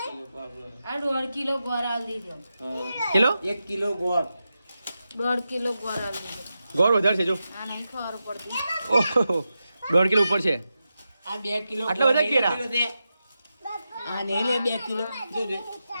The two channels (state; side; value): inverted; both; correlation -0.90